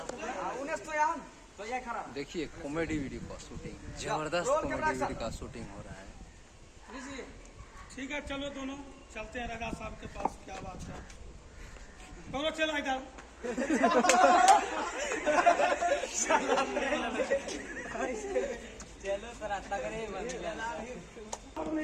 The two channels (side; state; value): both; identical; correlation 1.00